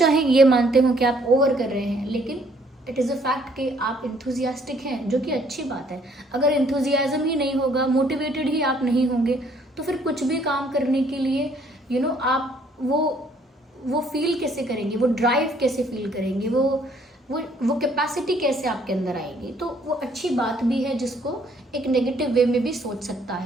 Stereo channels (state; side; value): normal; both; correlation 0.64